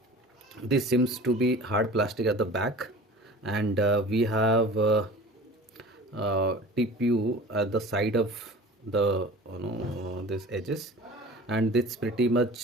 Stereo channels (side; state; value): both; normal; correlation 0.40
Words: this seems to be hard plastic at the back, and we have TPU at the side of the this edges, and this pretty much